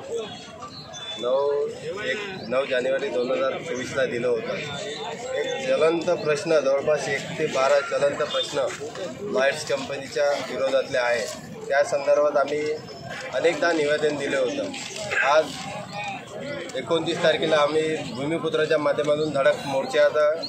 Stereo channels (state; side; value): identical; both; correlation 1.00